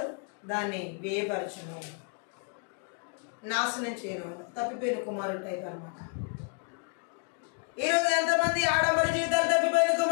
దాన్ని వ్యయపరచును, నాశనం చేయను, తప్పిపోయిన కుమారుడు టైప్ అనమాట. ఈరోజు ఎంతమంది ఆడంబర జీవితాలు తప్పిపోయిన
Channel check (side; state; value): right; quieter; 40.0 dB